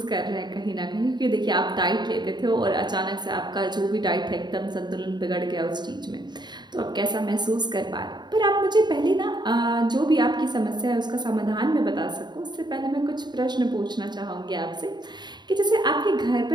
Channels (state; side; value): late; left; 0.21 ms